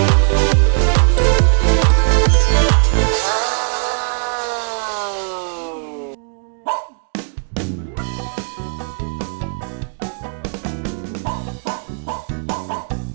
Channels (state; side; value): silent; left; 61 dB below the other